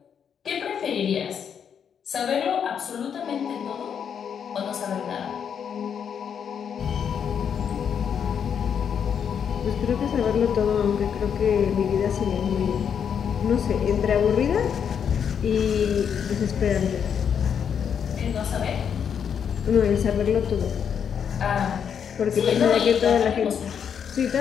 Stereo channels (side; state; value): right; quieter; 7.7 dB